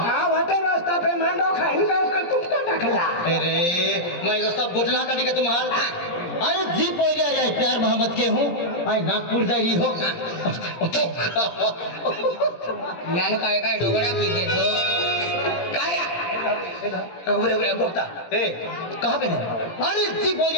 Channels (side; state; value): right; late; 17 ms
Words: वाटे रास्ता पे मांडो खाइन का तुमका टकला अरे मैं रास्ता बोझला का दिखे तुम्हार अरे जी पोरिया रे प्यार मोहब्बत के हूं आई नागपुर जाई हो ज्ञान काय डोगड़ा की दे तो काया उबरे गोता ए कहां पे है अरे जी